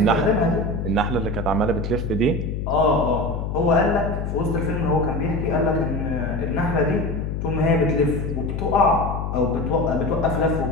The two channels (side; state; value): left; noise; hum, 3 dB below the sound